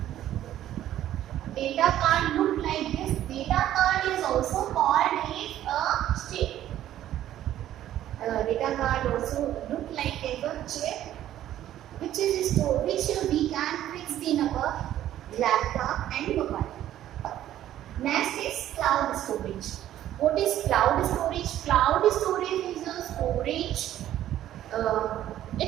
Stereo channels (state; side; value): quieter; left; 12.4 dB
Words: data card look like this. Data card is also called as a chip. Data card also look like as a chip, which is stored, which we can fix in our laptop and mobile. Next is cloud storage. What is cloud storage? Cloud storage is a storage.